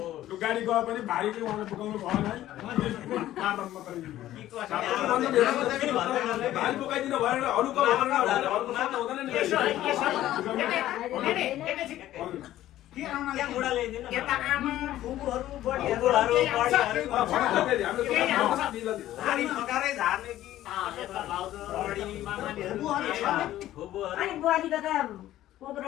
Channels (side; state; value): right; quieter; 13.8 dB